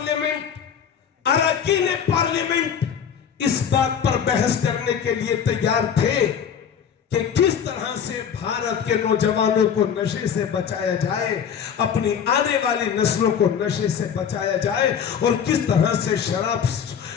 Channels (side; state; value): right; quieter; 7.8 dB